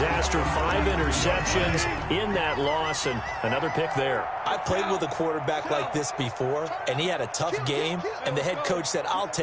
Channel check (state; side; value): identical; both; correlation 1.00